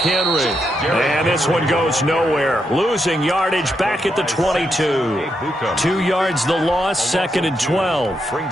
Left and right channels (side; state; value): both; normal; correlation 0.82